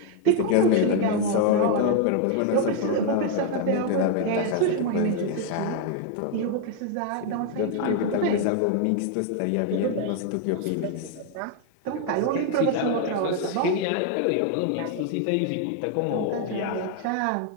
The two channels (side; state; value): both; different; correlation 0.00